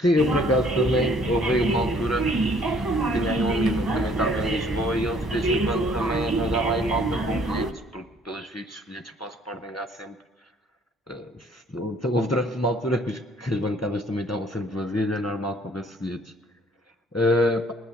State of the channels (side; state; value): both; normal; correlation 0.59